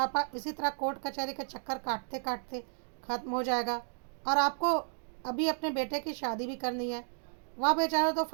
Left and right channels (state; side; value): silent; left; digital silence